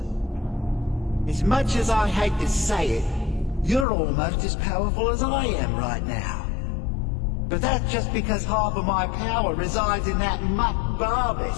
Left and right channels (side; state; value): right; drops out; at 3.9 s